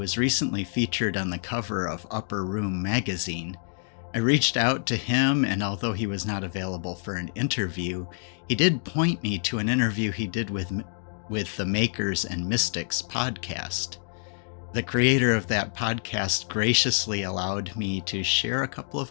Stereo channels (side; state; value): right; silent; digital silence